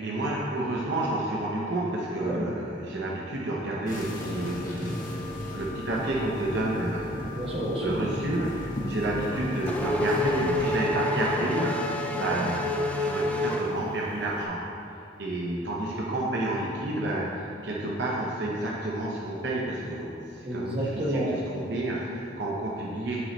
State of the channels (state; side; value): normal; both; correlation 0.52